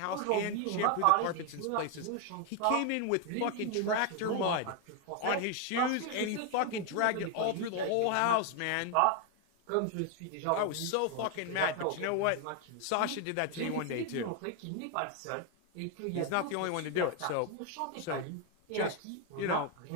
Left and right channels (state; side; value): different; both; correlation 0.01